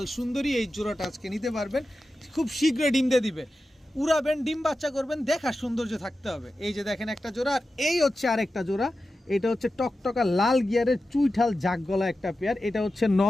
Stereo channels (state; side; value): normal; both; correlation 0.92